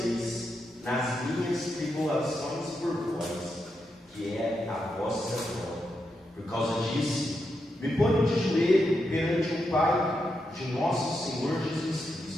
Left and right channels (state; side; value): normal; both; correlation 0.84